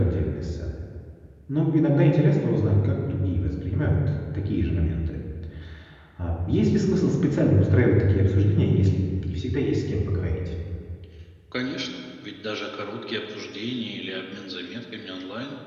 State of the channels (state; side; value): identical; both; correlation 1.00